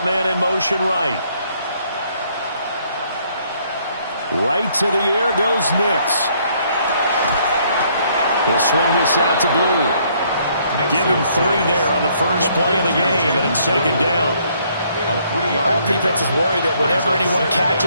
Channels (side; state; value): both; inverted; correlation -0.66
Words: man in motion right. Right to the air goes Nix. He'll swing this out to Blue. Give him 3 there on the first play of the game, and it's second down. All defenses worry that whenever anyone